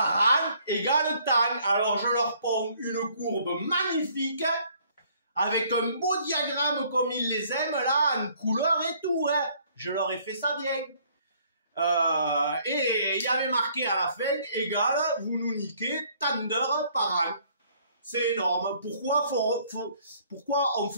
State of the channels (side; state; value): both; inverted; correlation -0.62